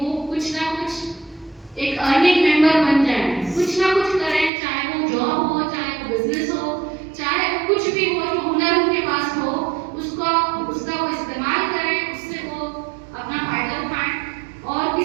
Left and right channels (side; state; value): left; drops out; at 4.5 s